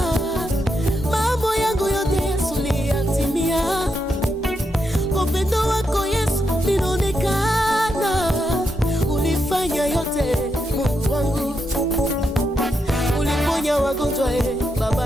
mambo yangu yote Yesu liyatimia. Upendo wako Yesu linaonekana, ulifanya yote Mungu wangu, uliponya wagonjwa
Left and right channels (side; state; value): both; normal; correlation 0.83